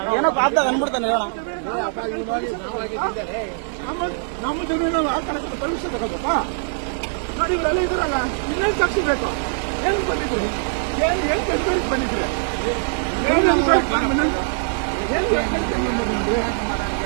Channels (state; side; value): silent; left; 64 dB below the other